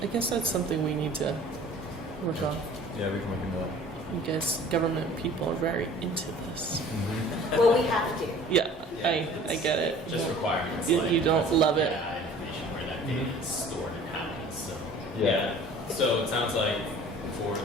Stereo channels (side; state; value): both; normal; correlation 0.47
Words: I guess that's something we need to work on. Yeah, we can look into that. I guess government people are very into this. Well, we have to. Yeah, I get it. Just requirements. You don't love it. Yeah, information where that data is stored and how. So Yeah. So it sounds like for